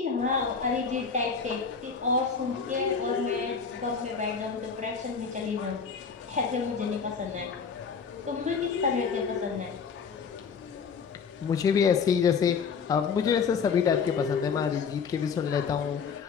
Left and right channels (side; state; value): right; quieter; 5.9 dB